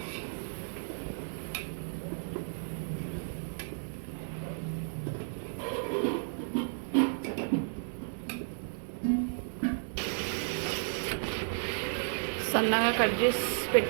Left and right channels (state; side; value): silent; left; digital silence